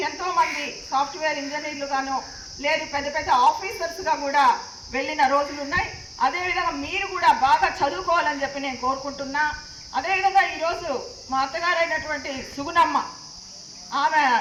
ఎంతోమంది సాఫ్ట్వేర్ ఇంజనీర్లుగానో లేదు పెద్ద పెద్ద ఆఫీసర్స్గా కూడా వెళ్ళిన రోజులు ఉన్నాయి. అదేవిధంగా మీరు కూడా బాగా చదువుకోవాలని చెప్పి నేను కోరుకుంటున్నా. అదేవిధంగా ఈరోజు మా అత్తగారైనటువంటి సుగుణమ్మ, ఆమె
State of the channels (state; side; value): identical; both; correlation 1.00